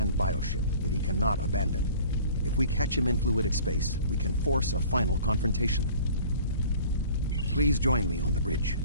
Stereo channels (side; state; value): both; inverted; correlation -0.47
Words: bioship that he cannot abandon. If we catch him in fluidic space, we can force a final confrontation. Please join me on the bridge.